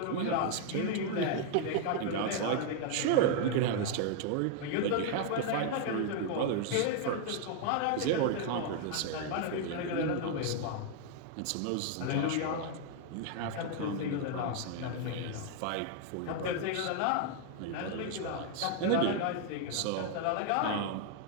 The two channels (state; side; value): different; both; correlation 0.00